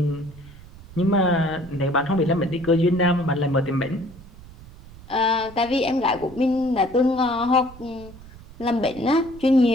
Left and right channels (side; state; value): right; noise; rumble, 19 dB below the sound